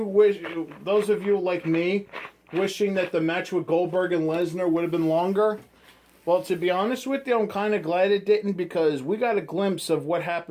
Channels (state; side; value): identical; both; correlation 1.00